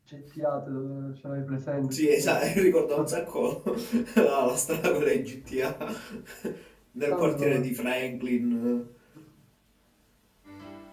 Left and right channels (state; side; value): identical; both; correlation 1.00